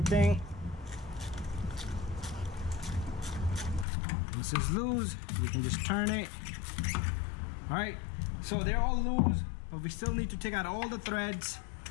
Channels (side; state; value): right; drops out; at 3.9 s